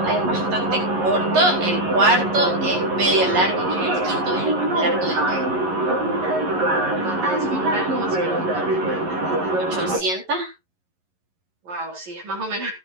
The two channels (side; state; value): left; late; 11 ms